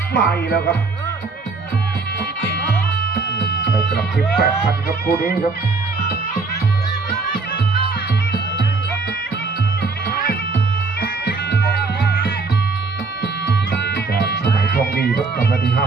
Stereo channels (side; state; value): left; quieter; 4.1 dB